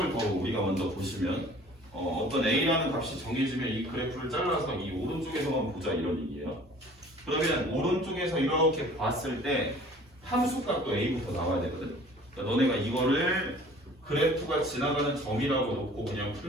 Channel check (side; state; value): both; normal; correlation 0.49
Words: 더 우리가 먼저 보시면 어떤 a라는 값이 정해지면 이 그래프를 잘라서 이 오른쪽에서만 보자 이런 얘기예요. 그러면 오른쪽에서 이렇게 봤을 때 함수 값도 a부터 나와야 되거든. 그러니까 너네가 이거를 그래프가 지나가는 점이라고 놓고 그냥